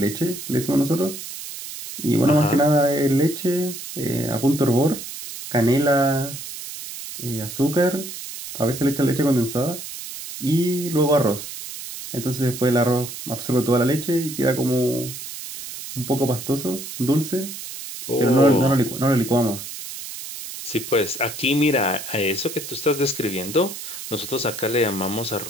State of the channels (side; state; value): right; noise; hiss, 10 dB below the sound